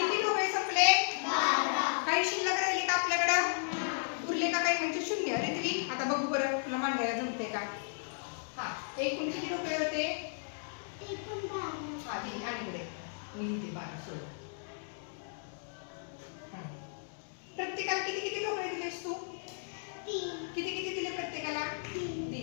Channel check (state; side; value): silent; right; digital silence